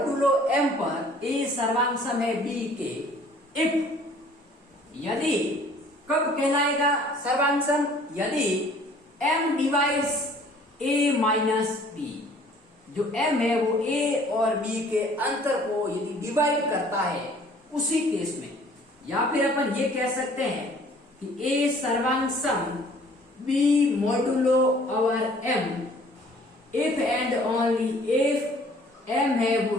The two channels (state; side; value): normal; both; correlation 0.54